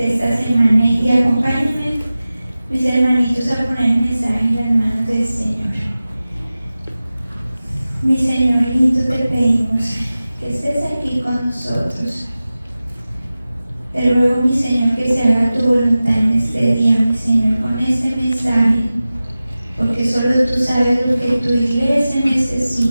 esta semana y acompáñenme, mis hermanitos, a poner el mensaje en las manos del Señor. Mi Señor lindo, te pedimos que estés aquí con nosotros. Te ruego, mi Señor, que se haga tu voluntad en este día, mi Señor, con este mensaje, porque solo tú sabes lo que tu iglesia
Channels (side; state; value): both; inverted; correlation -0.96